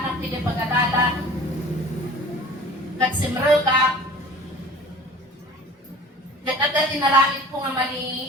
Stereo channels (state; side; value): normal; both; correlation 0.44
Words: hindi pag-adalan kat simrel ka kat agad dinalangit ko nga